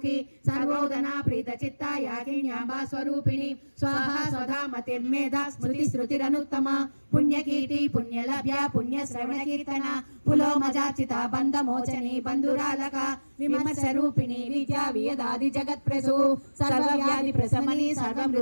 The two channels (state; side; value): inverted; both; correlation -1.00